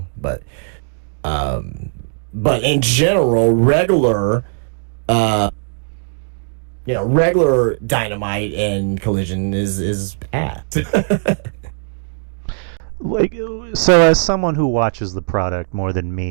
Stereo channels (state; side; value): silent; left; digital silence